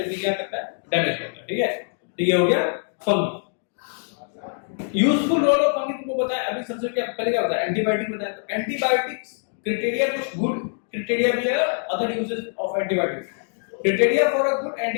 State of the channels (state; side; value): silent; right; digital silence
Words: भी क्या करता है? डैमेज करता है। ठीक है, तो ये हो गया fungi. Useful role of fungi तुमको बताया अभी। सबसे क्या पहले क्या बताया? एंटीबायोटिक बताया। तो एंटीबायोटिक्स क्राइटेरिया कुछ गुड क्राइटेरिया भी है, other uses of antibiotics. Criteria for a good